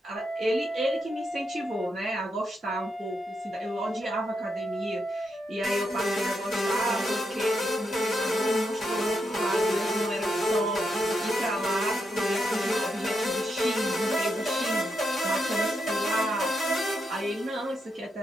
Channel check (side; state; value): both; normal; correlation 0.82